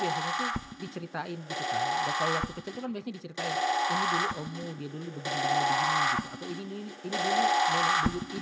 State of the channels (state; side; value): identical; both; correlation 1.00